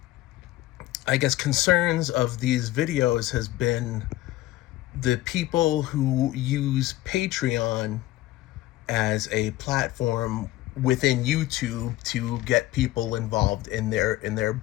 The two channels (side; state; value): right; quieter; 16.0 dB